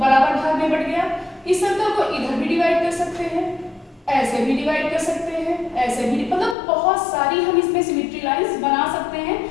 भाग में बट गया। इस सर्कल को इधर भी डिवाइड कर सकते हैं, ऐसे भी डिवाइड कर सकते हैं, ऐसे भी, मतलब बहुत सारी हम इसमें सिमेट्री लाइंस बना सकते हैं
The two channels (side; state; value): right; drops out; at 6.6 s